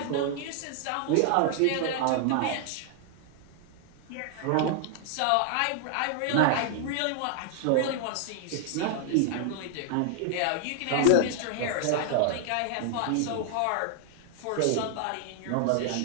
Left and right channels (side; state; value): both; different; correlation 0.00